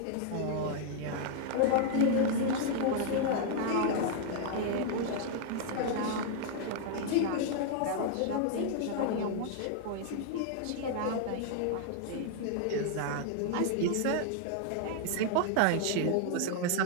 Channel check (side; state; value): both; different; correlation 0.00